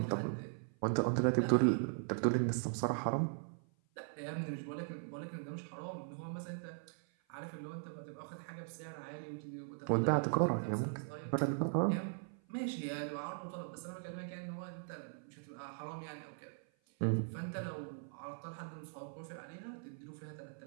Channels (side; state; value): left; silent; 51 dB below the other